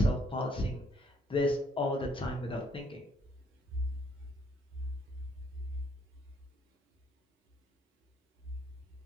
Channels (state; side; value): normal; both; correlation 0.67